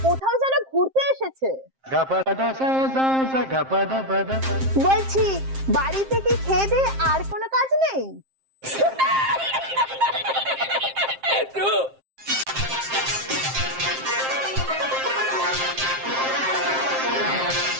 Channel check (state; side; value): late; left; 7.6 ms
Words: কোথাও যেন ঘুরতে এসেছে। বলছি বাড়িতে কি খেয়ে দিয়ে আর কোনো কাজ নেই?